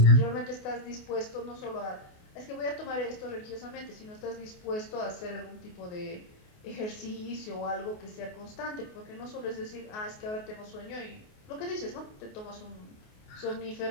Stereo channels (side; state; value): right; late; 28 ms